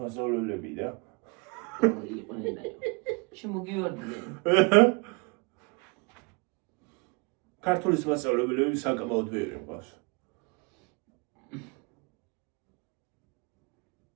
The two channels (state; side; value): quieter; left; 31.6 dB